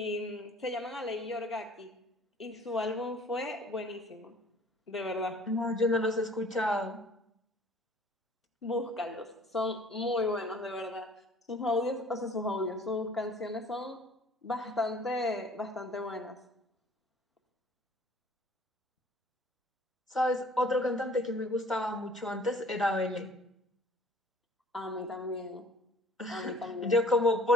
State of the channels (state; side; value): normal; both; correlation 0.52